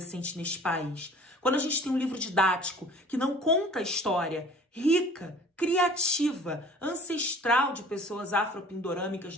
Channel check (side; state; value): both; normal; correlation 0.49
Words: neste país. Quando a gente tem um livro didático que não conta a história rica, criativa, ancestral de pessoas afropindorâmicas